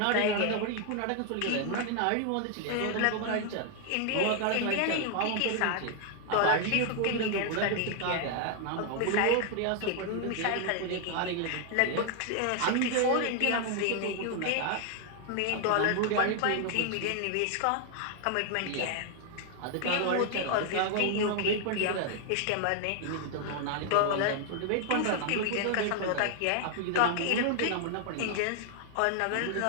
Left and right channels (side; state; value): both; different; correlation 0.00